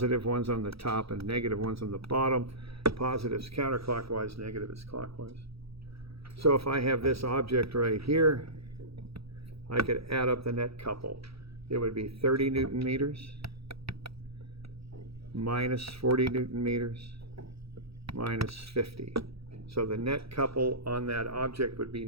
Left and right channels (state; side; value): late; left; 0.77 ms